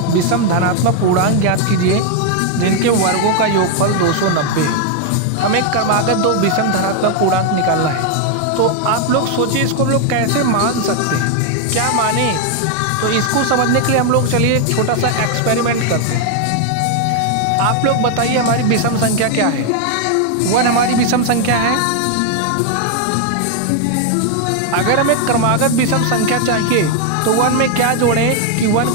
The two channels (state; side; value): different; both; correlation 0.01